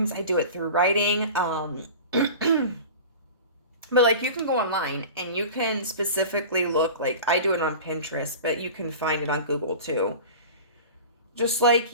I do it through writing. But like, you can go online and you can specifically look, like, I do it on Pinterest, but you can find it on Google too. Just like,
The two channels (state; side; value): inverted; both; correlation -0.36